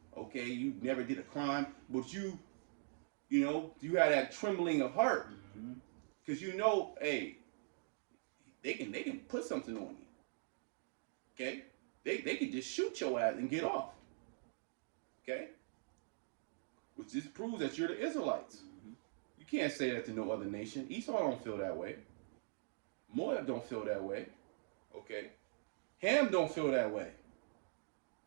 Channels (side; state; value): left; silent; digital silence